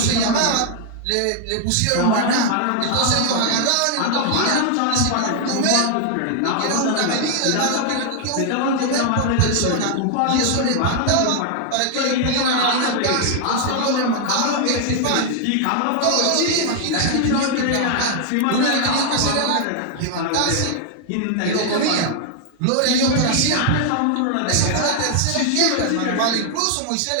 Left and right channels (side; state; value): both; different; correlation 0.00